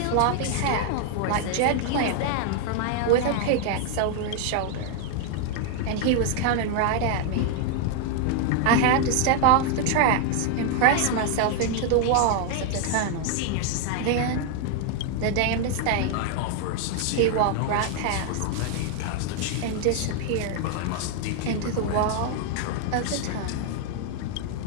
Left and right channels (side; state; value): both; different; correlation 0.00